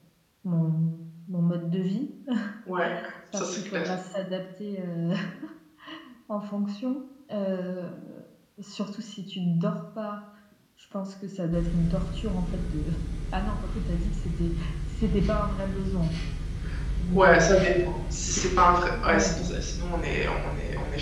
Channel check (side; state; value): both; identical; correlation 1.00